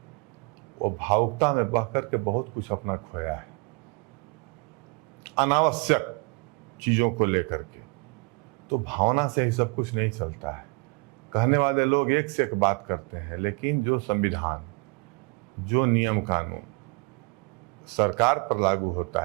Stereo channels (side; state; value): left; quieter; 29.4 dB